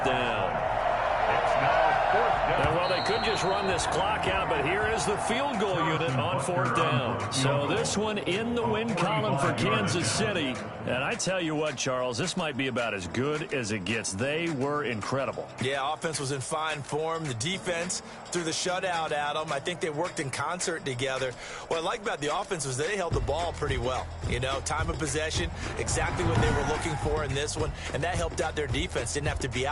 down. It's now 4th down. And well, they could just run this clock out, but here is the field goal unit on 4th down. So this one in the win column for Kansas City. And I tell you what, Charles, this might be about as good as it gets. They were incredible. Yeah, offense was in fine form. The defense threw the shutout at them. I think they worked in concert together. What I like about the offense was they held the ball pretty well. You know, time of possession, exactly what they were looking for in this one. And that helped out their defense. Didn't have to be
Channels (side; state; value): both; identical; correlation 1.00